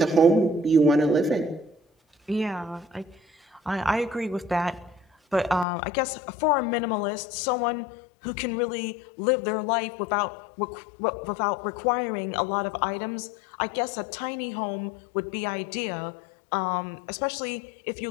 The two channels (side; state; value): right; drops out; at 5.7 s